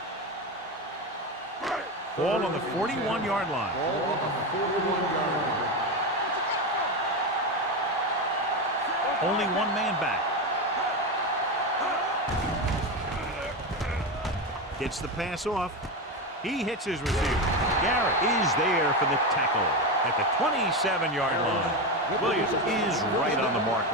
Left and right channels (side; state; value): both; normal; correlation 0.16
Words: Ball on the 41-yard line. Ball on the 41-yard line. Only one man back. Gets the pass off. He hits his receiver. Garrett is there for the tackle at the 27-yard line. Williams is right on the mark